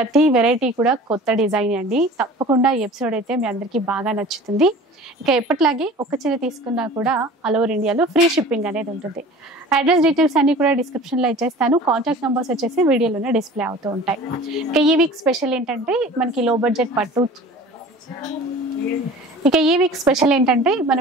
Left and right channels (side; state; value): both; normal; correlation 0.42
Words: వెరైటీ కూడా కొత్త డిజైన్ అండి. తప్పకుండా ఈ ఎపిసోడ్ అయితే మీ అందరికీ బాగా నచ్చుతుంది. ఇక ఎప్పటిలాగే ఒక చీర తీసుకున్నా కూడా ఆల్ ఓవర్ ఇండియాలో ఫ్రీ షిప్పింగ్ అనేది ఉంటుంది. అడ్రస్ డీటెయిల్స్ అన్ని కూడా డిస్క్రిప్షన్లో ఇచ్చేస్తాను. కాంటాక్ట్ నెంబర్స్ వచ్చేసి వీడియోలోనే డిస్ప్లే అవుతూ ఉంటాయి. ఇక ఈ వీక్ స్పెషల్ ఏంటంటే మనకి లో బడ్జెట్ పట్టు. ఇక ఈ వీక్ స్పెషల్ ఏంటంటే